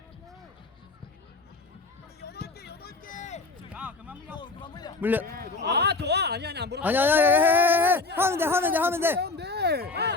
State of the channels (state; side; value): quieter; right; 3.7 dB